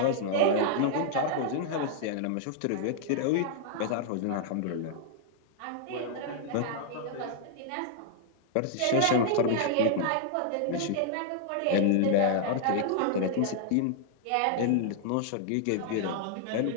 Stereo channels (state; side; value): different; both; correlation -0.01